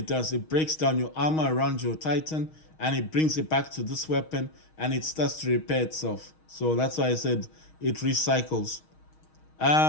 does. It breaks down your armor around your Titan and it brings it back to this weapon and it starts to repair itself. So that's why I said it recycles.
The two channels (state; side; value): late; right; 6.4 ms